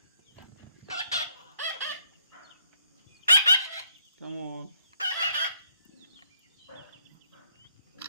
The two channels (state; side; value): inverted; both; correlation -0.72